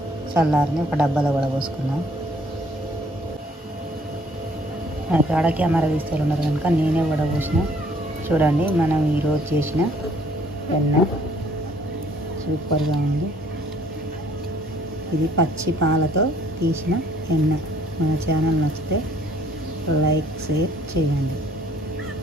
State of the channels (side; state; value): both; normal; correlation 0.61